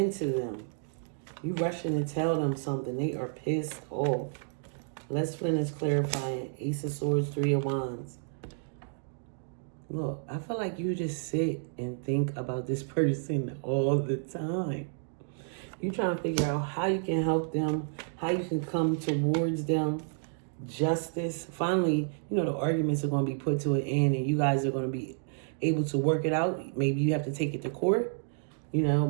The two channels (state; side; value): silent; left; digital silence